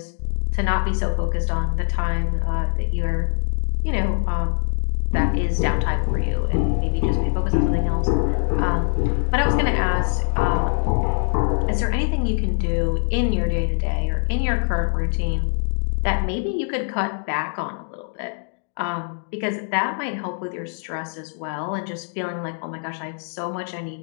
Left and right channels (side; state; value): right; silent; digital silence